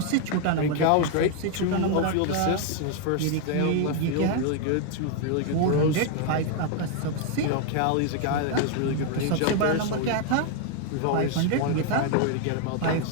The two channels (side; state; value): both; different; correlation 0.00